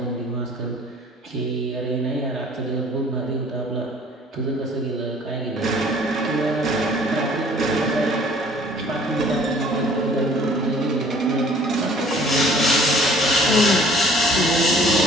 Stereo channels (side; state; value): both; normal; correlation 0.54